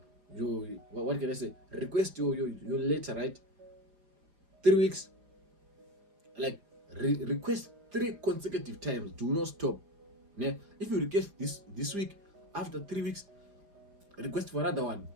can I say? Request your letter, right? 3 weeks. Like request 3 consecutive times. Do not stop. Ne? If you request this week, after 3 weeks, request for another one,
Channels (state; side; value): late; left; 4.9 ms